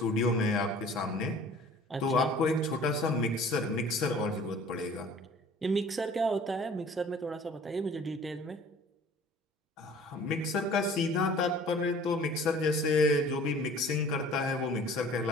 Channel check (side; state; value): both; normal; correlation 0.49